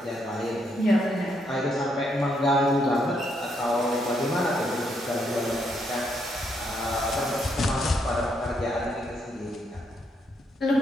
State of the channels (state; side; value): normal; both; correlation 0.76